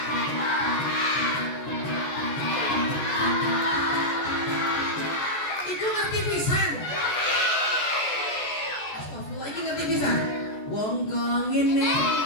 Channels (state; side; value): late; right; 14 ms